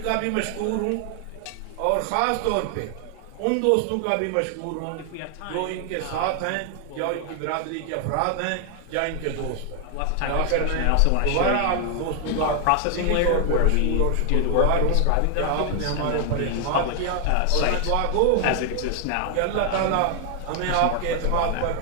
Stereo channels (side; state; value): both; different; correlation 0.00